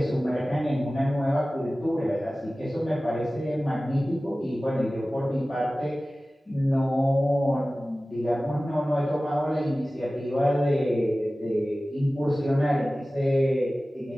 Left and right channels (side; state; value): both; normal; correlation 0.97